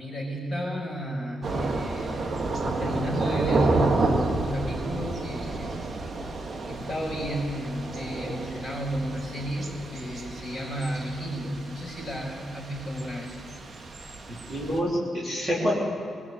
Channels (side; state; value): both; normal; correlation 0.83